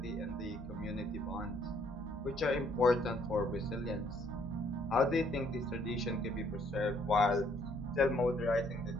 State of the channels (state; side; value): normal; both; correlation 0.65